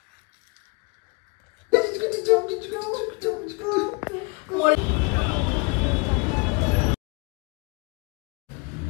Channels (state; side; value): quieter; right; 30.4 dB